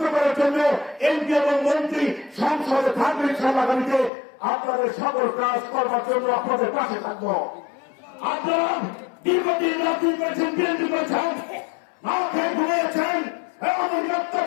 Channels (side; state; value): right; drops out; at 4.1 s